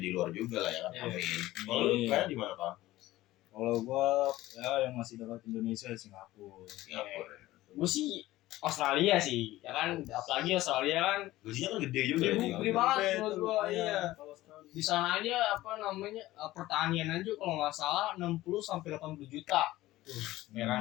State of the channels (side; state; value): right; quieter; 16.7 dB